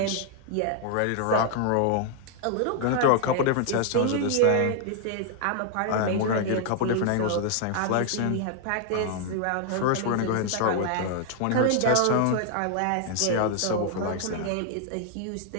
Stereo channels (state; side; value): different; both; correlation 0.00